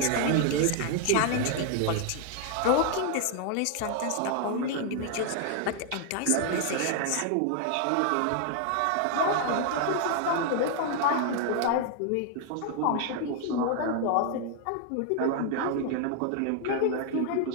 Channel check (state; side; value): different; both; correlation 0.00